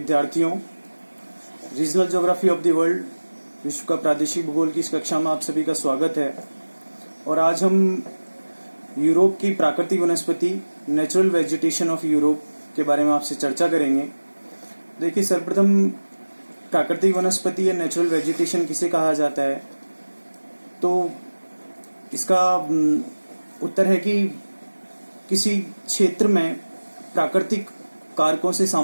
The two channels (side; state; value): both; inverted; correlation -1.00